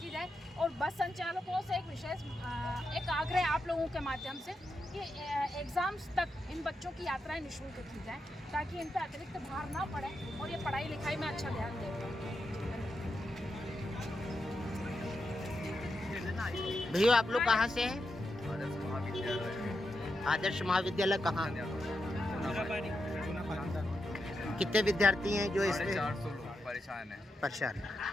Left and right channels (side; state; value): both; normal; correlation 0.86